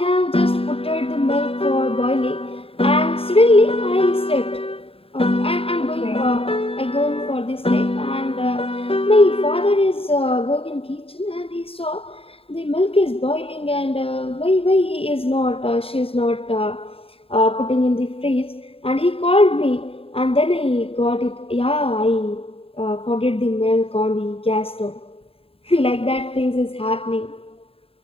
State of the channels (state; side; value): late; right; 0.27 ms